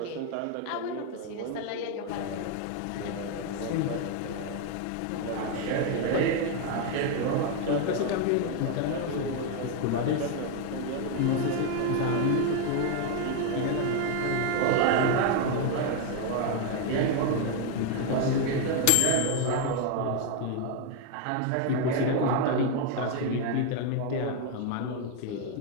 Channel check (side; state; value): both; different; correlation 0.01